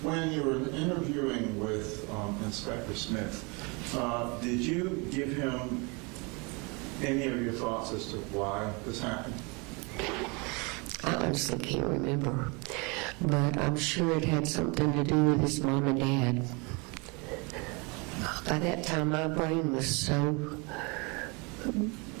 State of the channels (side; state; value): left; quieter; 29.8 dB